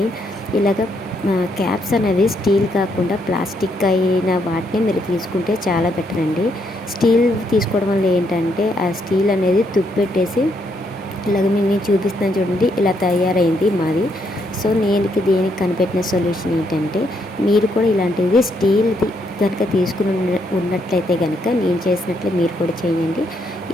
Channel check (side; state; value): both; normal; correlation 0.75